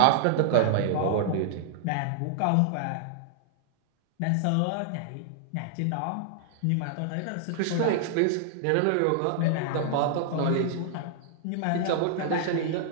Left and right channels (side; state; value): both; different; correlation -0.01